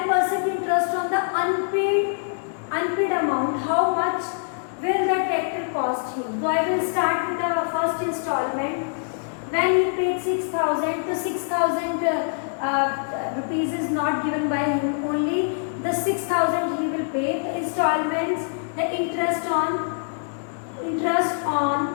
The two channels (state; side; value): silent; right; digital silence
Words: interest on the unpaid amount. How much will the tractor cost him? So I will start with the first installment. When he paid 6,000, so 6,000 rupees is not given by him, only the 6,000 he will pay. The installments, the interest on